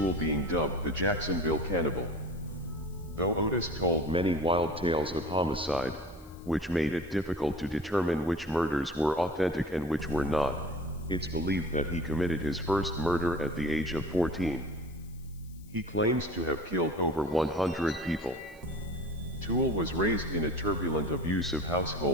being dubbed the Jacksonville Cannibal. Though Otis told many wild tales of homicide, which made it difficult to determine which murders were authentic and which were not, it's believed that he committed his first murder at the age of 14. He claims to have killed over 100 people. Toole was raised in a turbulent, abusive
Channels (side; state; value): left; noise; hiss, 27 dB below the sound